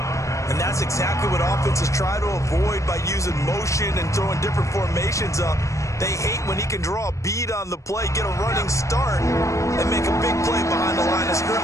And that's exactly what offenses try to avoid by using motion and throwing different formations up. They hate when he can draw a bead on the play, get a running start, and make a big play behind the line of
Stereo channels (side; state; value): right; late; 0.15 ms